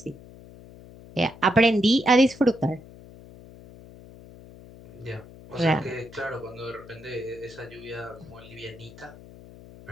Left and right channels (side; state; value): left; noise; hum, 19 dB below the sound